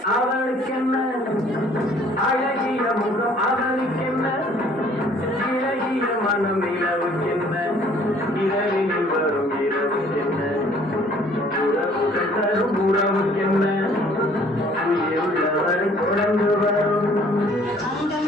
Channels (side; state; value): both; normal; correlation 0.57